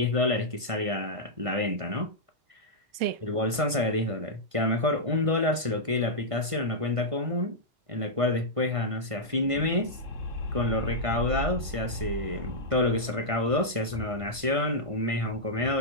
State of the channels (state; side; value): late; left; 1.5 ms